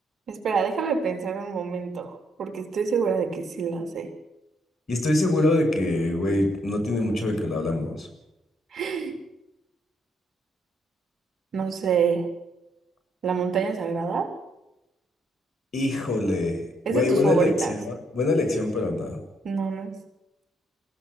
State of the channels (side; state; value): both; normal; correlation 0.72